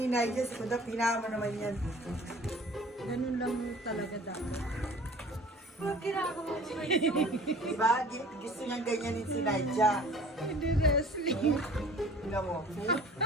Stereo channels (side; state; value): both; normal; correlation 0.48